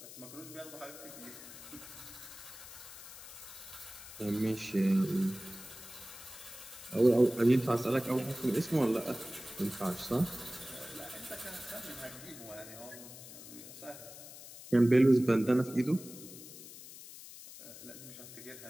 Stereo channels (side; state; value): left; noise; hiss, 15 dB below the sound